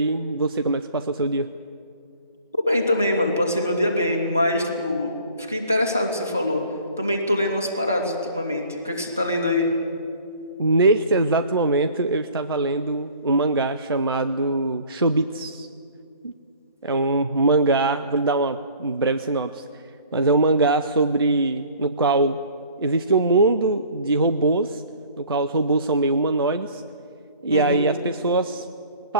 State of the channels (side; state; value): both; inverted; correlation -0.50